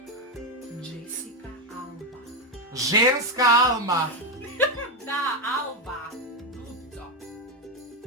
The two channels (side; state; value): both; normal; correlation 0.08